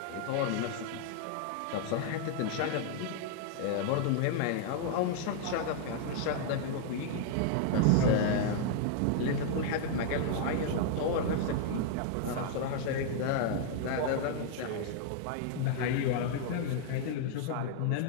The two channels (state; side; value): different; both; correlation 0.00